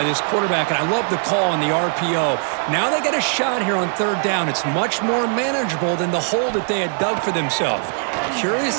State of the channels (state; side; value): silent; left; 59 dB below the other